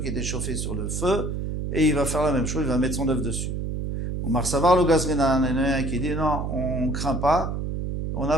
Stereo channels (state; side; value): noise; right; hum, 2 dB below the sound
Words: a été chauffé sur le feu et il va faire la même chose, il va mettre son œuf dessus. Ou Marsavar le Gazrinan, il y en a un qui dit non, on craint pas, on n'a